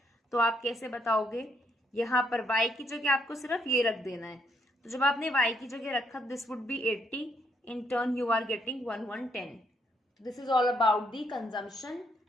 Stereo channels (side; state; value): both; normal; correlation 0.72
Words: तो आप कैसे बताओगे? यहाँ पर y की जगह आपको सिर्फ ये रख देना है। तो जब आपने y की जगह रखा, this would be 80, in turn you are getting 1110। This is all about the consumption